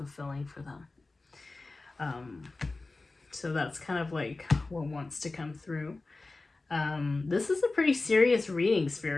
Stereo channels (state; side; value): quieter; right; 3.4 dB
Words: for them. So that's kind of like what wants to come through. This is a pretty serious reading,